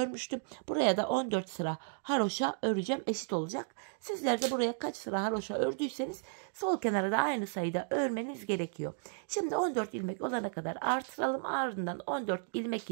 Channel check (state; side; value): silent; left; digital silence